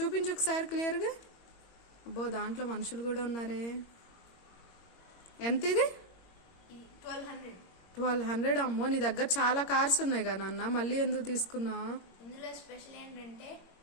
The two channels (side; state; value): right; late; 21 ms